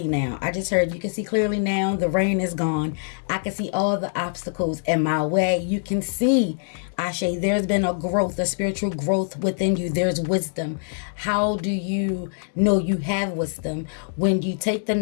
now. I just heard you can see clearly now. The rain is gone. I can see all the obstacles in my way. You can see, Ashe, there's been a growth, a spiritual growth within you. There's wisdom. How do you know you have wisdom? When you take the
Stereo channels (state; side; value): silent; right; digital silence